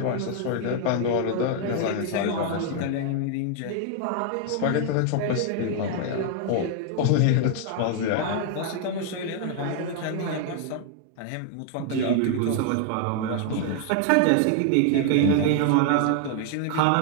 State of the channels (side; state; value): both; different; correlation 0.00